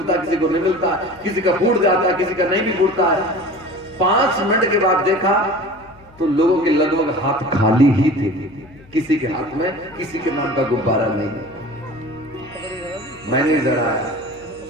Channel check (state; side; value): noise; left; hum, 25 dB below the sound